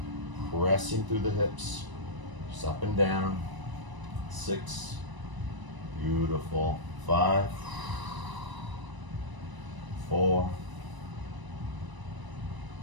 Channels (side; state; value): left; late; 1.0 ms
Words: pressing through the hips. Just up and down. 6, beautiful. 5, 4,